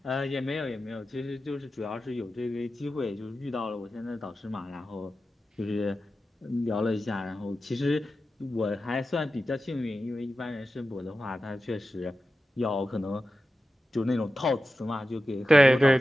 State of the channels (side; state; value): both; normal; correlation 0.92